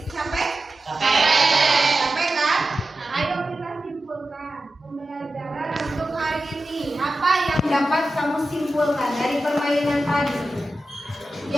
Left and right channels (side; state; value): both; normal; correlation 0.93